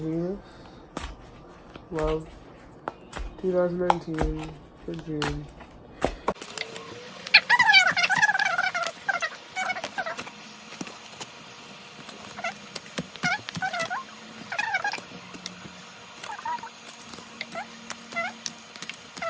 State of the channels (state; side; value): identical; both; correlation 1.00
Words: Venus. Love, 2019 for June.